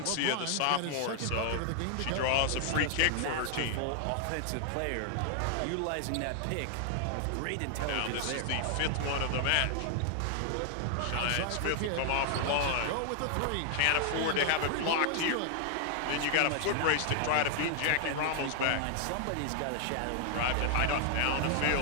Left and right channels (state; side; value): different; both; correlation 0.00